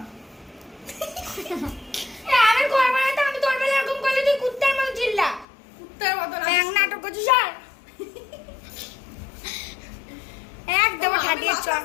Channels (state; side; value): drops out; right; at 5.5 s